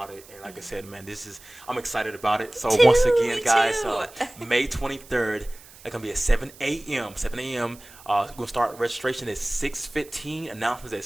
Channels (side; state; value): right; noise; hiss, 21 dB below the sound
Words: it. And like I said, man, I'm excited about it. So once again, guys, May 23rd, It's going to be at 7 a.m. 7 a.m. We're going to start registration at 6:15. Announcements at